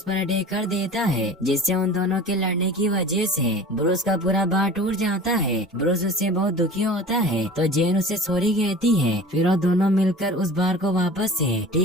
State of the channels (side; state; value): both; normal; correlation 0.39